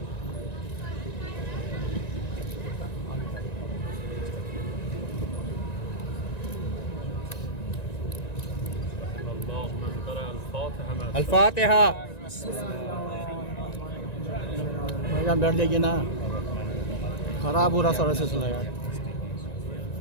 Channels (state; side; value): late; right; 1.9 ms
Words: الفاتحہ۔ بھائی جان بیٹھ جائیے نا، خراب ہو رہا سارا سلسلہ یار۔